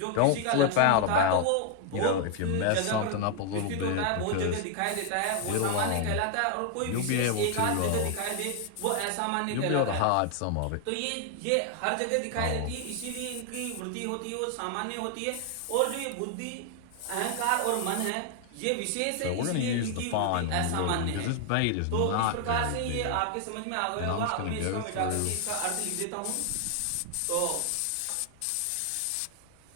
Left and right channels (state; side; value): different; both; correlation 0.00